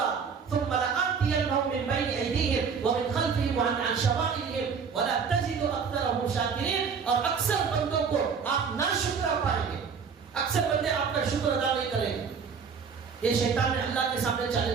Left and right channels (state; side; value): quieter; left; 6.0 dB